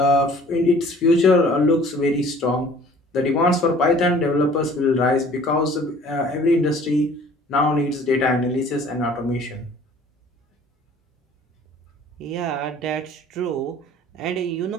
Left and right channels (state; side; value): normal; both; correlation 0.51